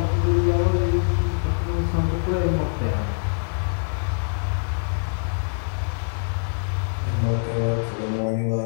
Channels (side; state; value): right; silent; 58 dB below the other